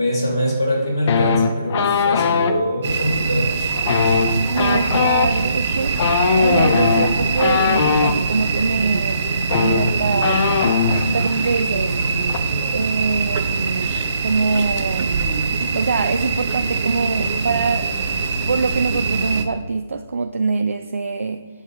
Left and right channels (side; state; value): both; inverted; correlation -0.70